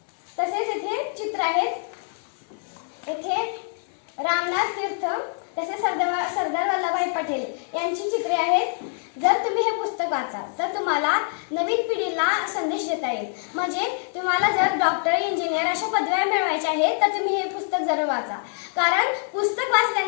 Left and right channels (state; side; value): silent; right; 62 dB below the other